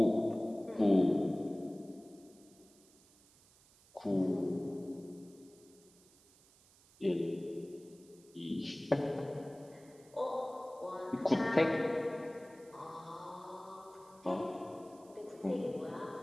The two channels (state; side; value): noise; right; hiss, 27 dB below the sound